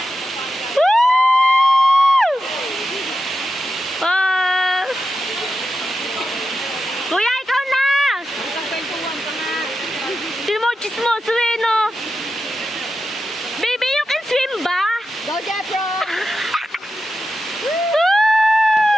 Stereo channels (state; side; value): normal; both; correlation 0.90